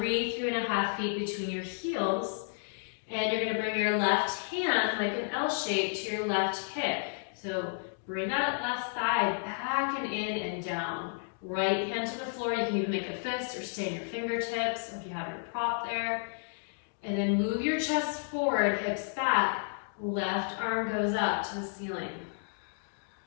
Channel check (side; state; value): right; silent; digital silence